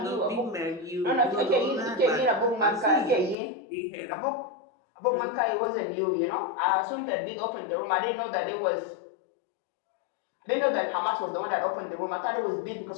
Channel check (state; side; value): drops out; right; at 3.4 s